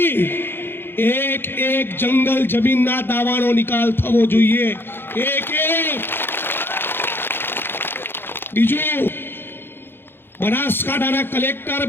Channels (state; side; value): late; right; 0.10 ms